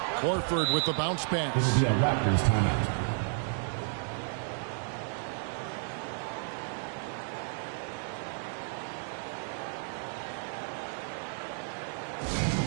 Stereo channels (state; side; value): silent; left; 56 dB below the other